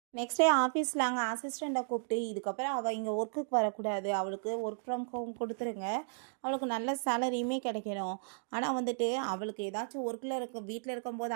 நெக்ஸ்ட் டே ஆஃபீஸில் அங்கே அசிஸ்டண்ட்டை கூப்பிட்டு, இதுக்கப்புறம் அவள் இங்கே ஒர்க்குக்கு வரக்கூடாது, அவளுக்கு ஒர்க் ஃப்ரம் ஹோம் கொடுத்துருங்க, அவளுக்கு நல்ல சேலரியுமே கிடைக்கணும். ஆனால் வந்துட்டு அவளுக்கு ஏதாச்சும் ஒர்க்கில் வீட்டில் இருக்கும்போது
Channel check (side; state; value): left; silent; digital silence